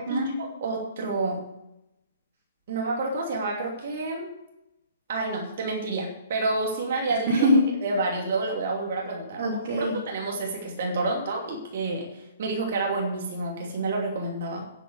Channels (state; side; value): inverted; both; correlation -0.55